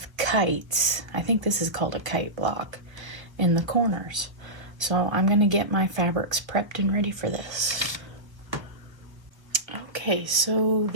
kites. I think this is called a kite block in the corners. So I'm gonna get my fabrics prepped and ready for this. Okay, so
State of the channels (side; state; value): left; late; 1.1 ms